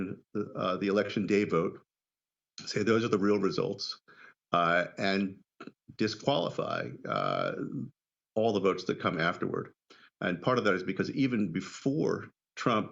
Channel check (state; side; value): identical; both; correlation 1.00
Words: the election day vote, say those are the real results, and disqualify all the votes that come afterward. And part of that is because even before